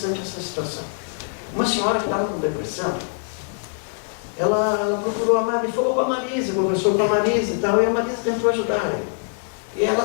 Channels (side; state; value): right; silent; 63 dB below the other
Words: essa situação. Uma senhora que estava com depressão, ela procurou a Marisa, falou com a Marisa, conversou com a Marisa e tal, e a Marisa tentou ajudar ela. E